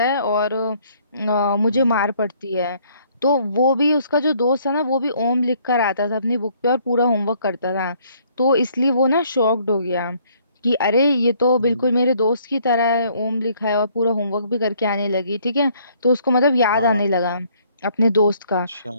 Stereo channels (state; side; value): inverted; both; correlation -0.63